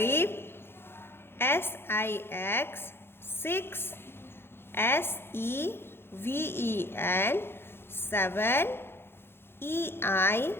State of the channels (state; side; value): late; right; 0.11 ms